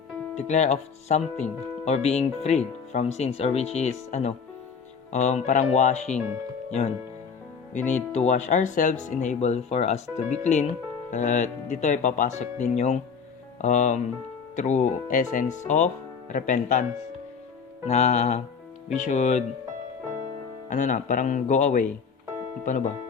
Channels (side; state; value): right; quieter; 6.0 dB